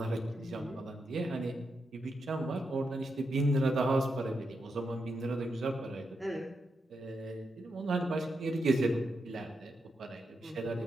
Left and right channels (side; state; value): both; normal; correlation 0.84